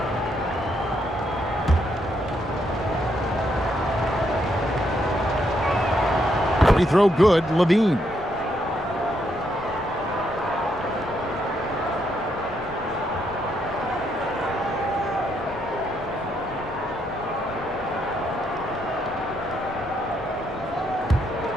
Free throw good, Levine.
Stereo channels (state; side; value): normal; both; correlation 0.76